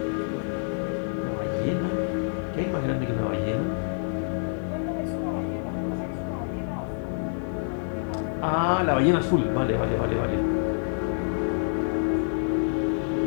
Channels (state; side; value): silent; right; 59 dB below the other